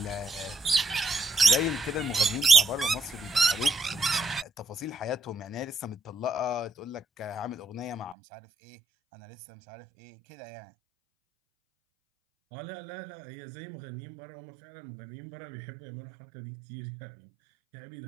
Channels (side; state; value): left; drops out; at 8.2 s